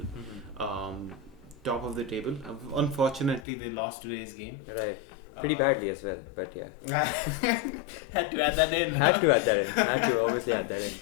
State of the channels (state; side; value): drops out; right; at 3.5 s